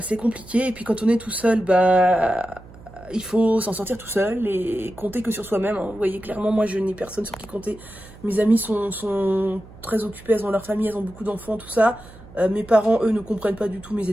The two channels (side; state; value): right; noise; hum, 20 dB below the sound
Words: compliqué. Et puis quand on est tout seul, bah, il faut s'en sortir tout seul et compter que sur soi-même. Hein. Vous voyez, clairement, moi, je n'ai personne sur qui compter. Mes amis sont très occupées, elles ont leur famille, elles ont beaucoup d'enfants, tout ça. Mes parents, eux, ne comprennent pas du tout mes